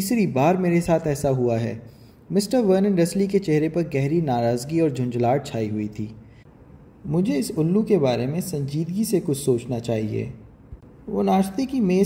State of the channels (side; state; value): both; identical; correlation 1.00